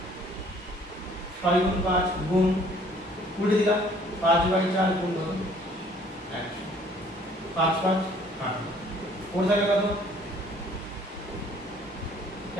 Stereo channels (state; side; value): normal; both; correlation 0.58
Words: 6 গুণ 5 গুণ উল্টে দিলাম 5/4 গুণ 100। 5 5 8 ওর জায়গায় কত?